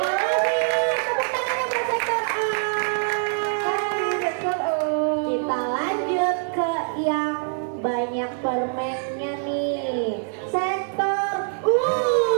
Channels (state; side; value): silent; left; 63 dB below the other